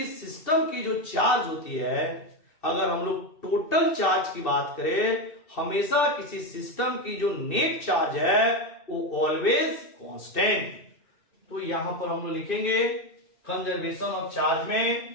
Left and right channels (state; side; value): late; right; 2.7 ms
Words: सिस्टम की जो चार्ज होती है, अगर हम लोग टोटल चार्ज की बात करें, हमेशा किसी सिस्टम की जो नेट चार्ज है वो ऑलवेज कांस्टेंट। तो यहां पर हम लोग लिखेंगे कंजर्वेशन ऑफ चार्ज